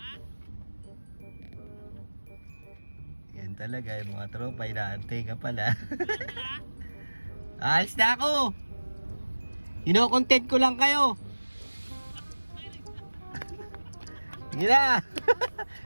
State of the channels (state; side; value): inverted; both; correlation -1.00